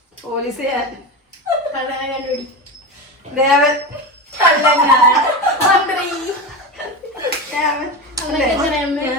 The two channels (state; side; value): normal; both; correlation 0.22